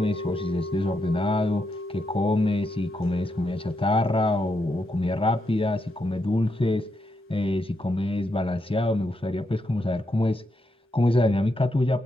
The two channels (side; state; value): both; normal; correlation 0.82